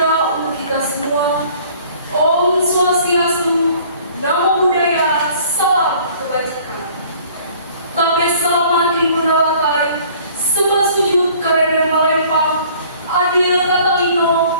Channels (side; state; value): both; inverted; correlation -0.53